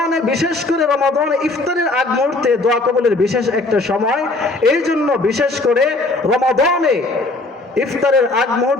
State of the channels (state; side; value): quieter; right; 3.0 dB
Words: বিশেষ করে রমাদানে ইফতারের আগ মুহূর্তে দোয়া কবুলের বিশেষ একটা সময়। এই জন্য বিশেষ করে রমাদানে ইফতারের আগ